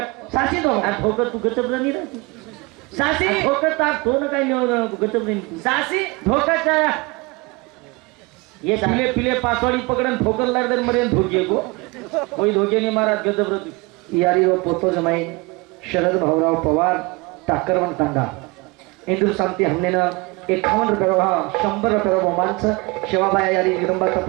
सासी धोको धोकत तू गचब नाही राहती सासी धोकत तो काही गचब नाही सासी धोकाच्या ये पिले पासवाडी पकडन ठोकर लागदर मरे धोके को कोई धोके नहीं मारा गजब रहती यारी व पोतो जमाई शरद भाऊराव पवार टाकरवन तांडा इंदूर शांती हमने ना 51 रुपये 100 रुपये बहुमानचं शिवाबाई यारी जगदंबा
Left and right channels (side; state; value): left; quieter; 26.1 dB